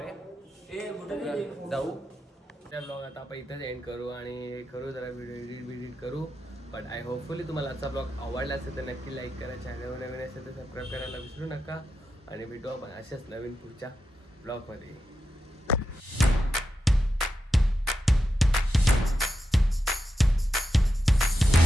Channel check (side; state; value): both; normal; correlation 0.88